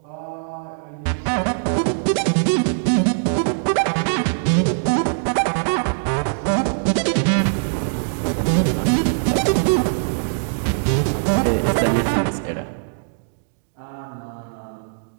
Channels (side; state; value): left; silent; digital silence